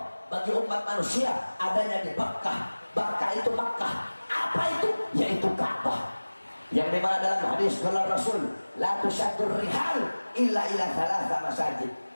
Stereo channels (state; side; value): inverted; both; correlation -1.00